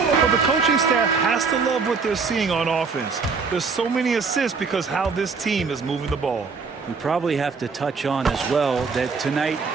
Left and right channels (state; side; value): quieter; left; 4.9 dB